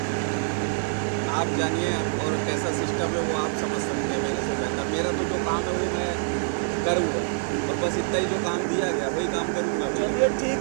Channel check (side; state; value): left; silent; digital silence